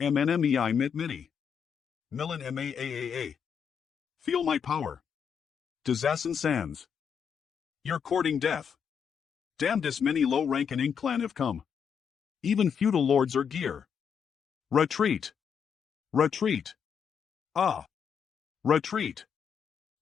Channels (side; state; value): right; quieter; 7.2 dB